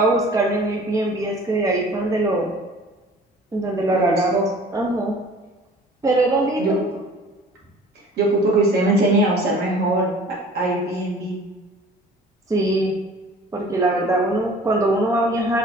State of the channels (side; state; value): both; normal; correlation 0.48